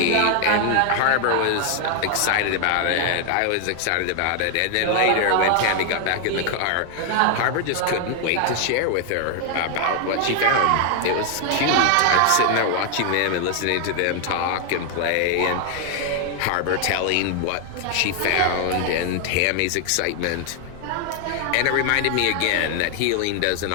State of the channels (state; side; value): different; both; correlation 0.00